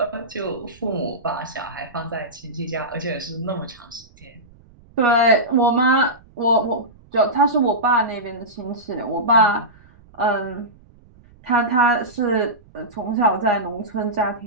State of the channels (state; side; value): noise; right; rumble, 26 dB below the sound